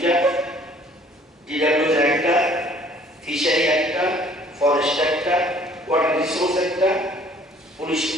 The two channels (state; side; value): normal; both; correlation 0.56